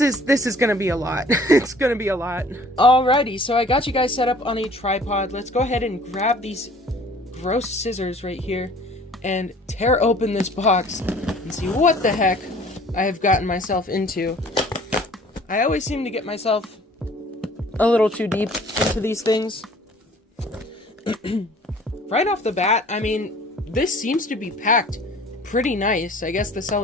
is gonna be a lot. It's gonna be a lot. Alrighty, so I got you guys set up on a tripod. Let's go ahead and grab these gross scissors right here and tear open this box and see what the heck I have gotten myself into. I always seem to get myself a little too deep into these things. Right off the bat, I mean, this seems to be packed pretty nice. I guess the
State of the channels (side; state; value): both; normal; correlation 0.51